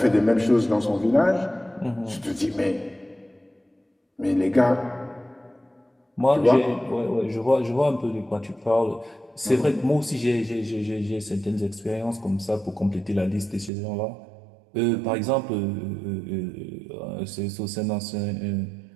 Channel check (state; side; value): drops out; left; at 13.7 s